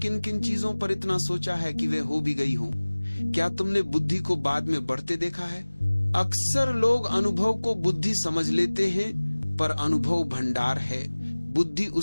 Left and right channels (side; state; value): both; inverted; correlation -1.00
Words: किन चीजों पर इतना सोचा है कि वे हो भी गई हों? क्या तुमने बुद्धि को बाद में बढ़ते देखा है? अक्सर लोग अनुभव को बुद्धि समझ लेते हैं, पर अनुभव भंडार है, बुद्धि